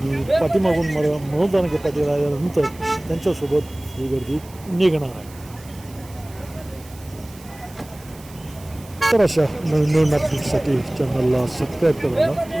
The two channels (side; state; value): right; noise; hiss, 22 dB below the sound